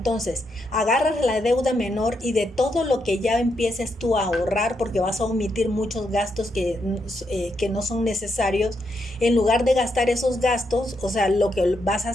agarras la deuda menor y de todo lo que ya empieces tú a ahorrar, porque vas a omitir muchos gastos que no son necesarios, en lugar de gastar esos gastos, o sea, lo que vas a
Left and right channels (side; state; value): both; normal; correlation 0.80